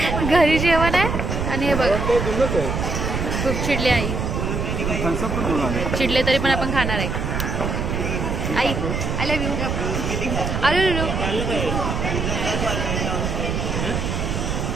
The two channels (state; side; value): noise; right; rumble, 1 dB below the sound